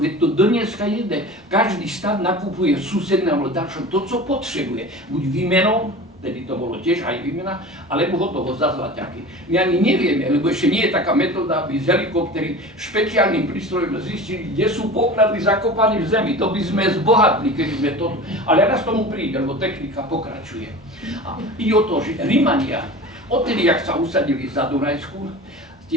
veď to dneska jede. Každý štát nakupuje susednému dačom to, co potrebuje. Buď výmenou, tedy to bolo tiež aj výmena, alebo hotovo za zlaťaky. My ani nevieme, lebo ešte nie je taká metóda, aby z helikoptery špeciálnym prístrojom zistili, kde sú poklady zakopané v zemi. To by sme zbohatli, keby sme to... Ale raz tomu príde, lebo technika pokračuje. A ide o to, že Rimania, odtedy, jak sa usadili za Dunajsku,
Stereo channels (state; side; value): normal; both; correlation 0.35